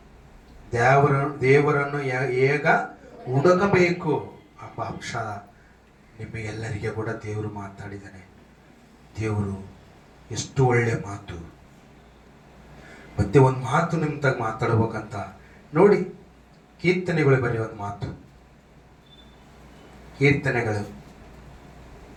ಹುಡುಕಬೇಕು ಎಂಬ ಅಂಶ ನಿಮಗೆಲ್ಲರಿಗೆ ಕೂಡ ದೇವರು ಮಾತಾಡಿದ್ದಾನೆ. ದೇವರು ಎಷ್ಟು ಒಳ್ಳೆ ಮಾತು. ಮತ್ತೆ ಒಂದು ಮಾತು ನಿಮ್ಮ ತಾಗ ಮಾತಾಡ್ಬೇಕಂತ ನೋಡಿ, ಕೀರ್ತನೆಗಳು ಬರೀ ಒಂದು ಮಾತು. ಕೀರ್ತನೆಗಳು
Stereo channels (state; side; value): identical; both; correlation 1.00